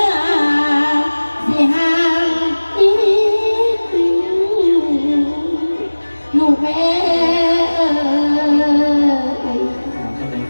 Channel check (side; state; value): both; inverted; correlation -1.00